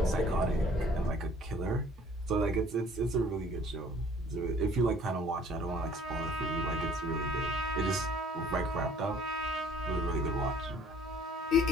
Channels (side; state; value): both; normal; correlation 0.55